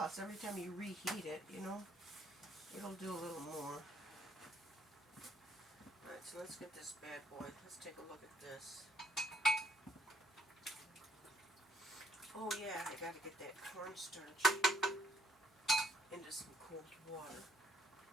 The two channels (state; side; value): normal; both; correlation 0.70